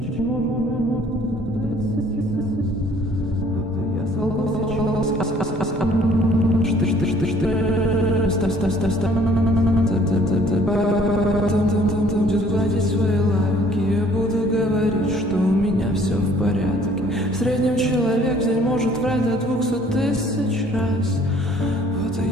платить свои лайки, я буду говорить, что у меня все в порядке. В среднем человек в день может врать до 200 000 раз. Вот и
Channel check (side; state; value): both; normal; correlation 0.58